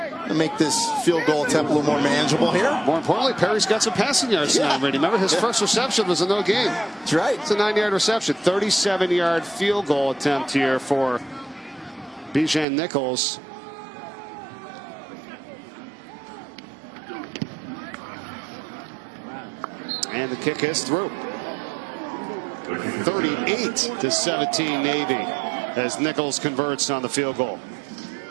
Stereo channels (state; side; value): drops out; left; at 12.7 s